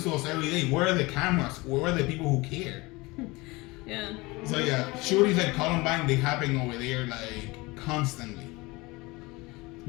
to us every day. Where are the cameras? Where are the people who care? Yeah. So yeah, shootings at Columbine, they happen over there like constantly.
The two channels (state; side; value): quieter; right; 23.3 dB